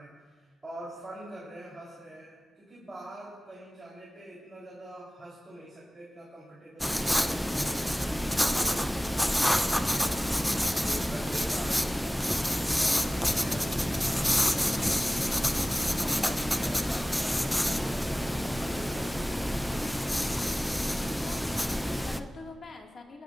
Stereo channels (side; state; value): both; normal; correlation 0.98